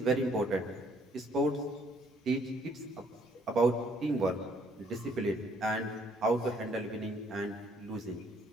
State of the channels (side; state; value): both; normal; correlation 0.65